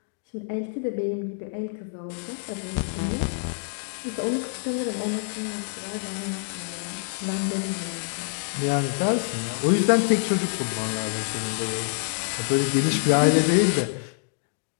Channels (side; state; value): right; silent; digital silence